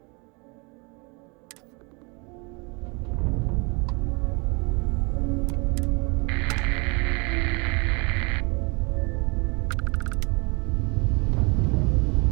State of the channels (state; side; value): quieter; left; 30.2 dB